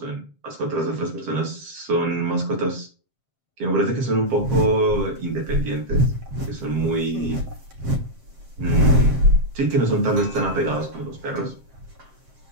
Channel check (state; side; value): late; left; 7.6 ms